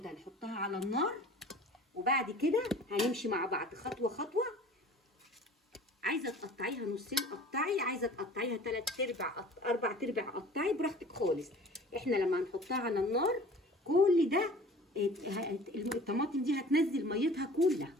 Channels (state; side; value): normal; both; correlation 0.45